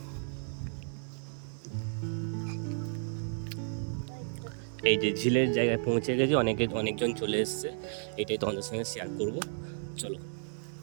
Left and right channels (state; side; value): silent; left; 56 dB below the other